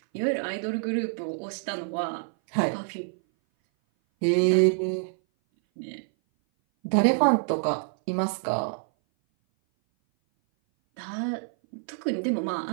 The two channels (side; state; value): left; silent; 58 dB below the other